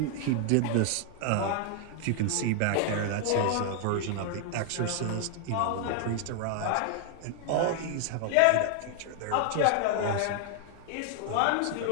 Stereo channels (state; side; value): different; both; correlation 0.00